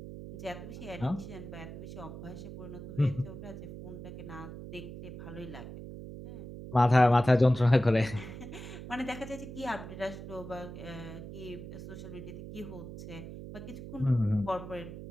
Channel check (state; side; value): noise; right; hum, 11 dB below the sound